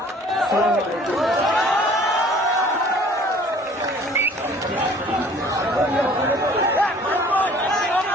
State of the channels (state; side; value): normal; both; correlation 0.52